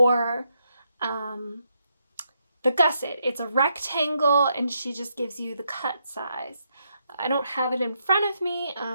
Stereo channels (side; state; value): both; inverted; correlation -0.79